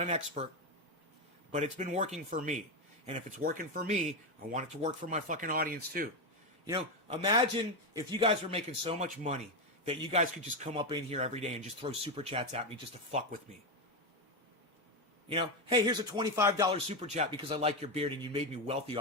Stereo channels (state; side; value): normal; both; correlation 0.10